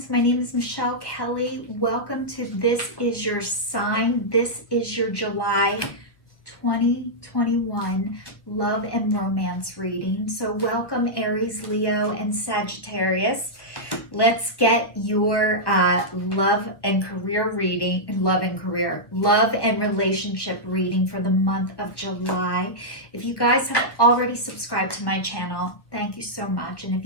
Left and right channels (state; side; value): late; right; 1.3 ms